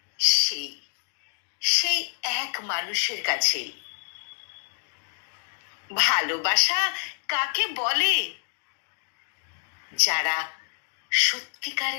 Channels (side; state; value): right; silent; digital silence